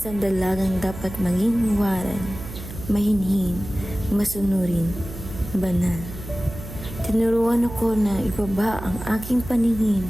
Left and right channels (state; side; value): noise; right; hum, 11 dB below the sound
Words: dalagang dapat maging huwaran, mahinhin, masunurin, banal. Tinuruan ako na ibaba ang aking paningin,